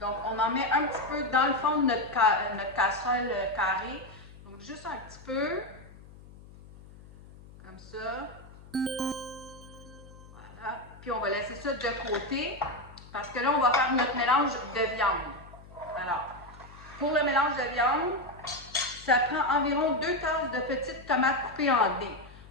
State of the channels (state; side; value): noise; left; hum, 20 dB below the sound